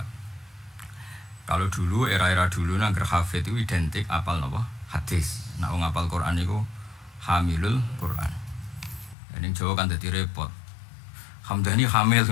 Kalau dulu era-era dulu nangger hafid itu identik apal napa? Hadis. Nek wong apal Quran iku hamilul Quran. Ning Jawa kan dadi repot. Hamdani hamil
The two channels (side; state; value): right; drops out; at 9.2 s